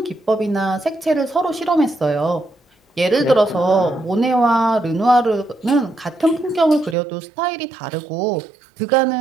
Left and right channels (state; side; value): drops out; left; at 7.0 s